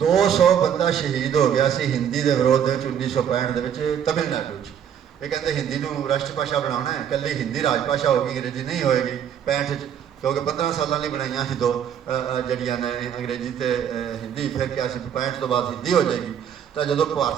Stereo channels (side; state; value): left; quieter; 8.9 dB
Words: ਬੰਦਾ ਸ਼ਹੀਦ ਹੋ ਗਿਆ ਸੀ ਹਿੰਦੀ ਦੇ ਵਿਰੋਧ ਦੇ ਵਿੱਚ 1965 ਦੇ ਵਿੱਚ ਤਮਿਲਨਾਡੂ 'ਚ। ਇਹ ਕਹਿੰਦੇ ਹਿੰਦੀ ਨੂੰ ਰਾਸ਼ਟਰ ਭਾਸ਼ਾ ਬਣਾਉਣਾ ਹੈ, ਇਕੱਲੀ ਹਿੰਦੀ ਰਾਜ ਭਾਸ਼ਾ ਹੋਗੀ, ਅੰਗਰੇਜ਼ੀ ਨਹੀਂ ਹੋਏਗੀ 65 'ਚ, ਕਿਉਂਕਿ 15 ਸਾਲਾਂ ਲਈ ਬਣਾਈਆਂ ਸੀ ਦੋ ਜਿਹੜੀਆਂ ਨੇ ਅੰਗਰੇਜ਼ੀ ਤੇ ਹਿੰਦੀ। ਫਿਰ ਕਿਹਾ ਸੀ 65 ਤੋਂ ਬਾਅਦ ਹਿੰਦੀ ਹੋ ਜਾਏਗੀ। ਤਾਂ ਜਦੋਂ